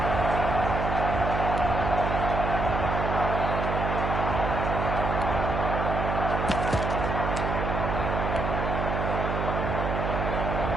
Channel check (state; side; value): noise; right; hum, 1 dB below the sound